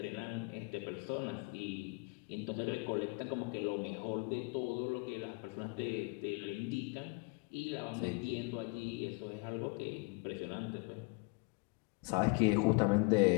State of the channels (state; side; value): quieter; right; 30.5 dB